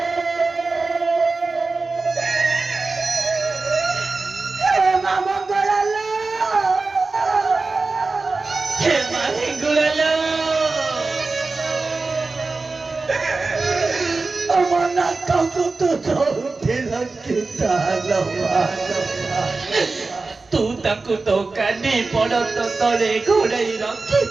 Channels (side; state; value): left; quieter; 3.8 dB